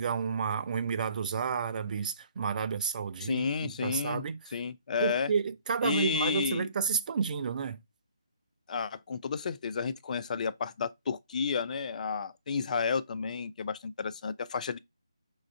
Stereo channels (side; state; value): both; inverted; correlation -0.58